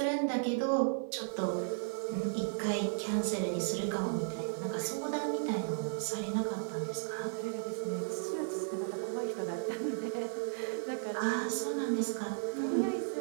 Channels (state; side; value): silent; left; 55 dB below the other